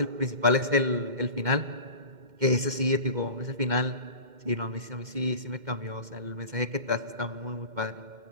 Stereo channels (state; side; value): late; left; 2.1 ms